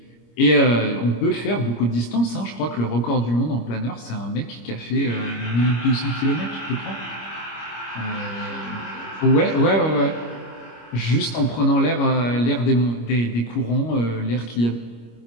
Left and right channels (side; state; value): right; late; 25 ms